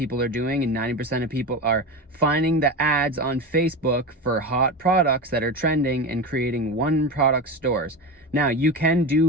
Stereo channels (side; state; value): both; normal; correlation 0.23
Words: are doing, and 90% of people are finding the ads on Facebook for hot products that are trending and creating one product stores. Now, you can